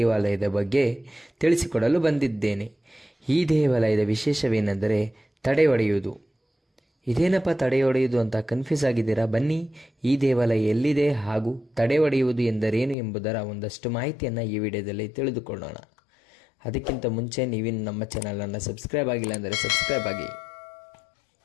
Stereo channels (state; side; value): drops out; right; at 13.0 s